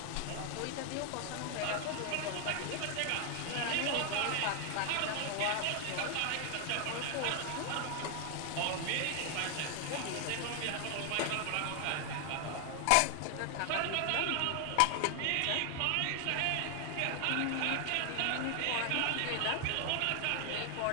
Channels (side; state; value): both; different; correlation 0.00